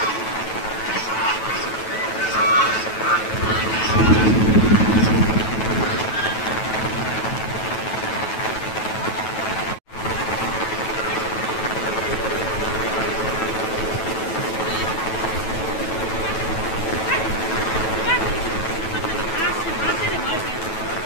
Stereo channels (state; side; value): late; right; 9.2 ms